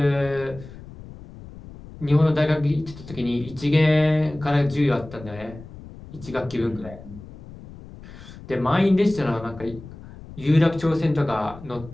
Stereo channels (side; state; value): left; noise; rumble, 17 dB below the sound